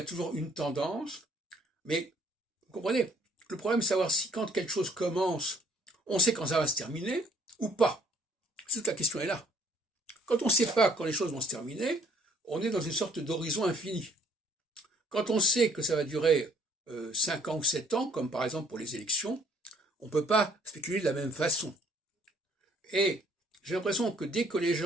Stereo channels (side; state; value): both; normal; correlation 0.61